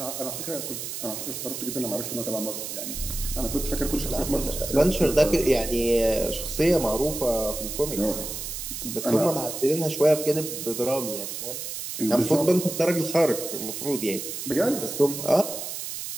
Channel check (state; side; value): noise; right; hiss, 6 dB below the sound